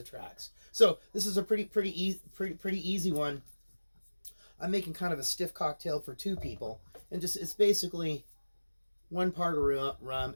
tracks. So this is a pretty easy one. I'm making kind of a stiff cocktail for 2 people, and it's basically 1 part of rum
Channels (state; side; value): inverted; both; correlation -1.00